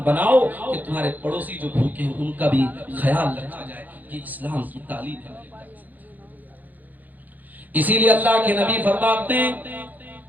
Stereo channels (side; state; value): left; late; 0.082 ms